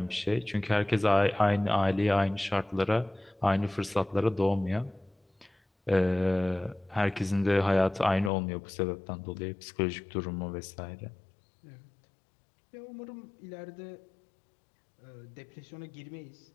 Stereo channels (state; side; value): drops out; right; at 8.3 s